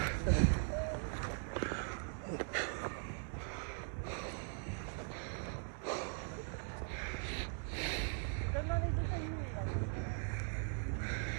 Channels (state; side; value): silent; left; 51 dB below the other